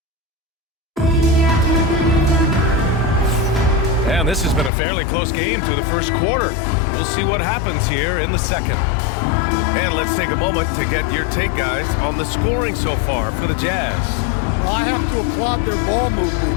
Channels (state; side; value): drops out; right; at 4.7 s